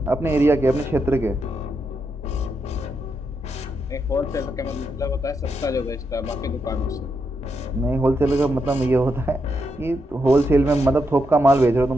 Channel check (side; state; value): both; normal; correlation 0.82